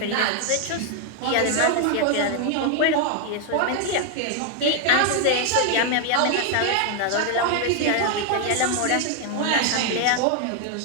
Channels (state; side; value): different; both; correlation 0.00